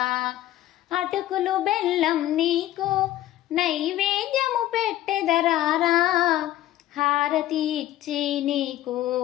అటుకులు బెల్లం నీకు నైవేద్యము పెట్టెదరారా, హారతి ఇచ్చి నీకు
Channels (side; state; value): right; quieter; 14.0 dB